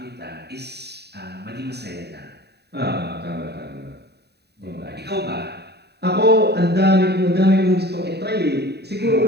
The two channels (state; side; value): late; left; 0.48 ms